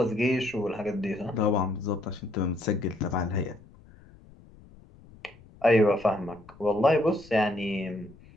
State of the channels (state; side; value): noise; left; rumble, 24 dB below the sound